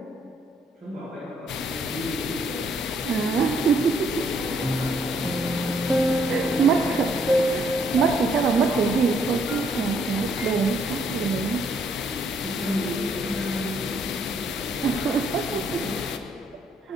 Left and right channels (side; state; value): both; normal; correlation 0.68